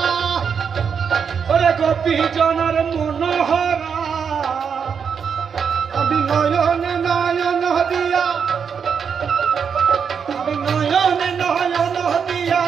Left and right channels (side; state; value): left; quieter; 6.7 dB